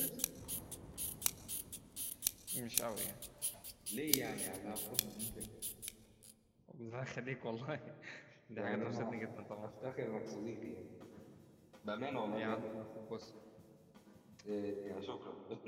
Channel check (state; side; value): identical; both; correlation 1.00